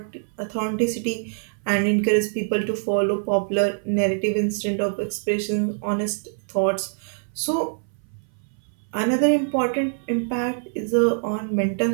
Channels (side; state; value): left; silent; 60 dB below the other